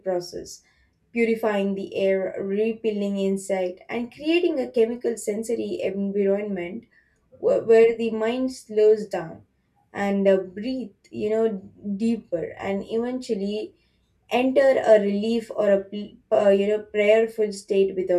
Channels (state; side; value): identical; both; correlation 1.00